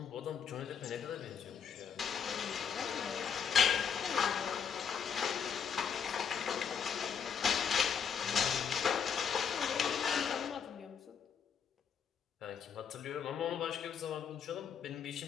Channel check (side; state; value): right; quieter; 7.2 dB